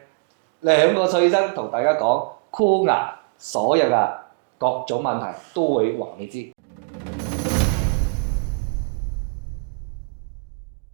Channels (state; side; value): quieter; left; 36.0 dB